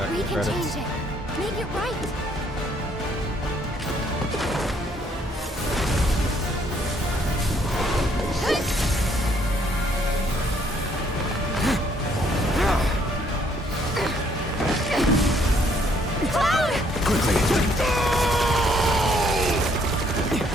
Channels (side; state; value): both; normal; correlation 0.66